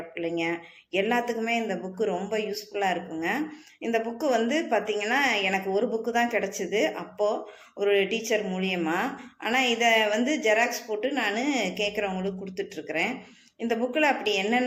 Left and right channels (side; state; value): both; identical; correlation 1.00